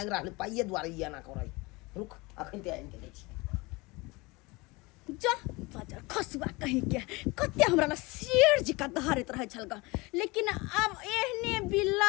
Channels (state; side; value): quieter; right; 24.5 dB